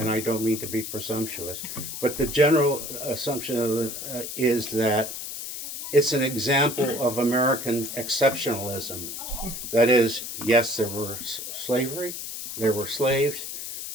I don't mean to be presumptuous, but the general assumption is that it's an example of American exceptionalism. That is, yes, there were slavery, there were slaves,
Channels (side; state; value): left; noise; hiss, 7 dB below the sound